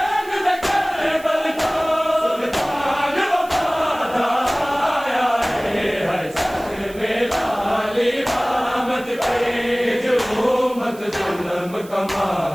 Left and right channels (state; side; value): noise; right; hiss, 21 dB below the sound